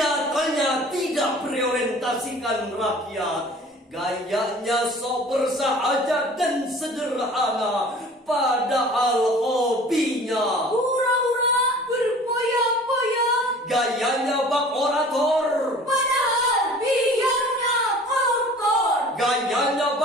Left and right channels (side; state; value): both; normal; correlation 0.46